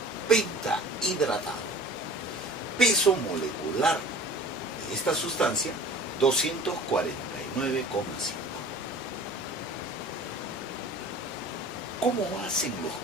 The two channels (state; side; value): normal; both; correlation 0.44